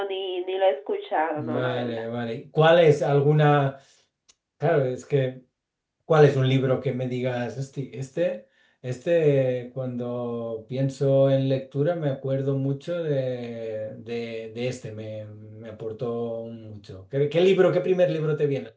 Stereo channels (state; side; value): identical; both; correlation 1.00